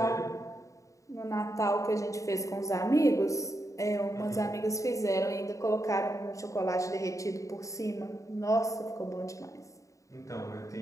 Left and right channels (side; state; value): right; late; 0.16 ms